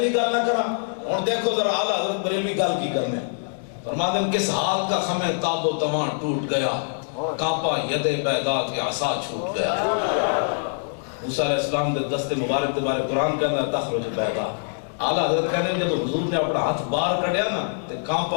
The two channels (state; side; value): silent; right; digital silence